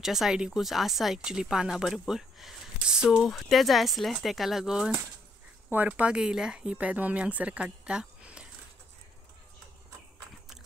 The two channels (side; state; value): both; normal; correlation 0.72